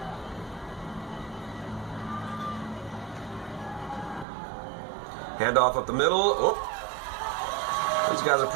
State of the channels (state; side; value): drops out; left; at 4.2 s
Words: Handoff up the middle. Oh. These guys are